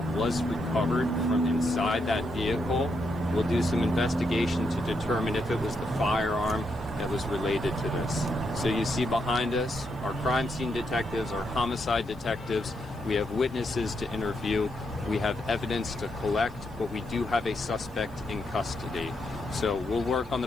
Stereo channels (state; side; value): noise; left; hiss, 30 dB below the sound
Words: was recovered from inside that vehicle. We'll do some investigation to determine if it was the firearm that was related to this. So you see behind us, our crime scene detectives, our homicide detectives, We have witnesses to interview. We have evidence to collect, but we do have a suspect in custody. So we'll work on